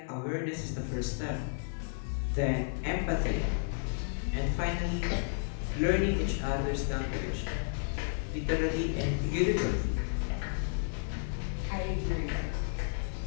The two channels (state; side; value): silent; right; digital silence